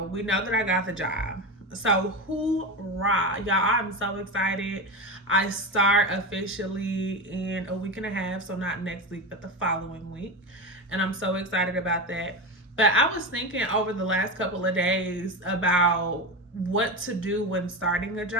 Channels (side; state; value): both; normal; correlation 0.19